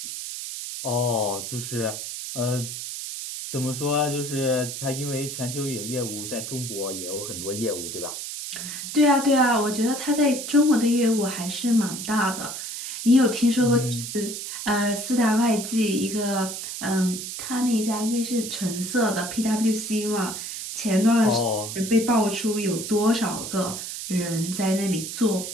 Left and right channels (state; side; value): noise; right; hiss, 7 dB below the sound